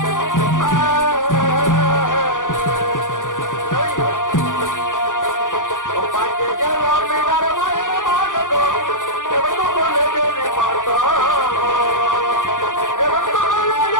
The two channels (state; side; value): late; right; 0.88 ms